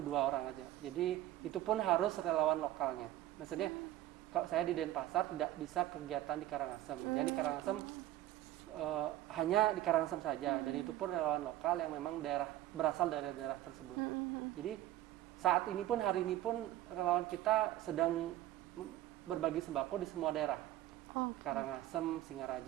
orang aja. Jadi itu pun harus relawan lokalnya. Maksudnya kalau saya di Denpasar tidak bisa kegiatan di Karangasem. Jadi di Karangasem hanya di Karangasem saja, dan itu pun relawan lokal yang memang berasal dari daerah tersebut. Jadi saat ini pun, hari ini pun relawan kita sedang berbagi sembako di semua daerah. Karangasem,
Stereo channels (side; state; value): left; quieter; 14.3 dB